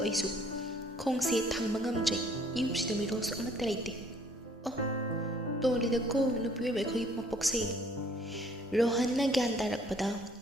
aisu khongse thangba ngamjai yumsida mirosu amatta leite oh tolida ko nupiwe ba khoi mapokse Rohan na gyan tarakpada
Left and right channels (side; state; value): both; normal; correlation 0.60